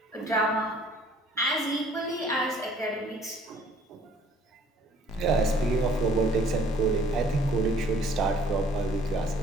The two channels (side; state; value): both; normal; correlation 0.57